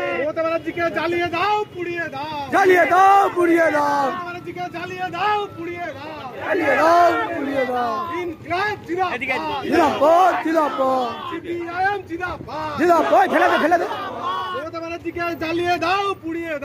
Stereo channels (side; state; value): both; identical; correlation 1.00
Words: মমতা ব্যানার্জিকে জ্বালিয়ে দাও, পুড়িয়ে দাও, জ্বালিয়ে দাও, পুড়িয়ে দাও, মমতা ব্যানার্জিকে জ্বালিয়ে দাও, পুড়িয়ে দাও, জ্বালিয়ে দাও, পুড়িয়ে দাও। ইনকলাব জিন্দাবাদ, জিন্দাবাদ, জিন্দাবাদ, সিপিআইএম জিন্দাবাদ, জিন্দাবাদ। ফেলে দে, ফেলে দে। মমতা ব্যানার্জিকে জ্বালিয়ে দাও, পুড়িয়ে